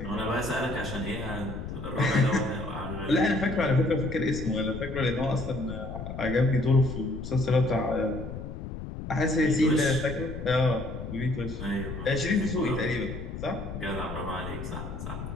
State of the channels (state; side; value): noise; left; rumble, 8 dB below the sound